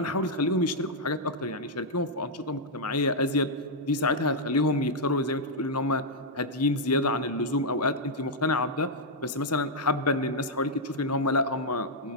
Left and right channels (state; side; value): normal; both; correlation -0.05